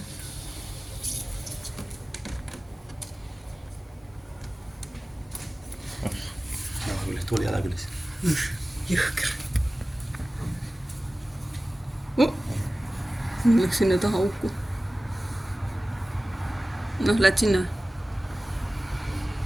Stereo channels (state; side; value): normal; both; correlation 0.97